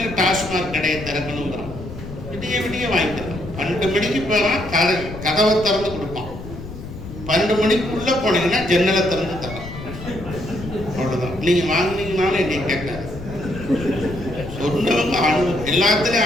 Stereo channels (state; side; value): noise; left; rumble, 12 dB below the sound